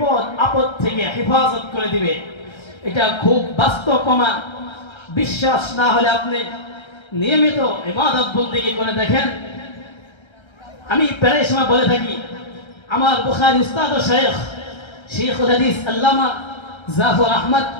আপদ থেকে হেফাজত করে দিবে। এটা খুব বাস্তব প্রমাণ। বিশ্বাস না হলে আপনি নিয়মিত ইবাদত বন্দেগী করে দেখেন। আমি প্রায় সময় বলে থাকি, আমার বুখারী উস্তাদ ও শেখুল হাদিস আল্লামা জাফর আহমদ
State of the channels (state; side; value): late; right; 1.3 ms